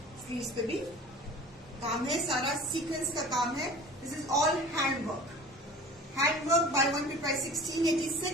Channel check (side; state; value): both; normal; correlation 0.42